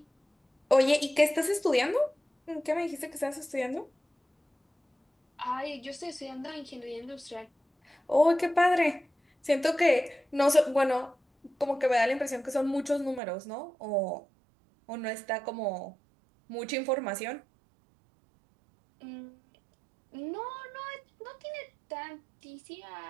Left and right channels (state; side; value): drops out; left; at 13.2 s